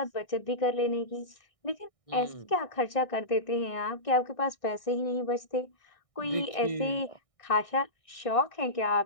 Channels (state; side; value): late; right; 1.6 ms